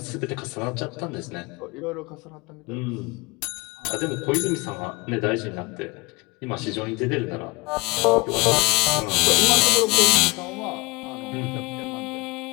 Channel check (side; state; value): right; quieter; 24.4 dB